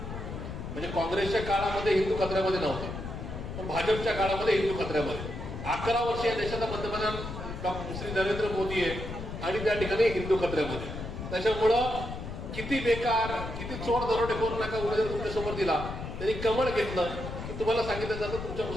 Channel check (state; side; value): noise; left; rumble, 7 dB below the sound